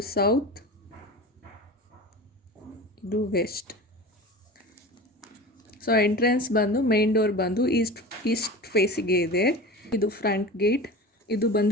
ಸೌತ್, ಇದು ವೆಸ್ಟ್. ಸೊ ಎಂಟ್ರೆನ್ಸ್ ಬಂದು ಮೇನ್ ಡೋರ್ ಬಂದು ಈಸ್ಟ್ ಫೇಸಿಗೆ ಇದೆ. ಇದು ಫ್ರಂಟ್ ಗೇಟ್, ಇದು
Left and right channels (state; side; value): normal; both; correlation 0.33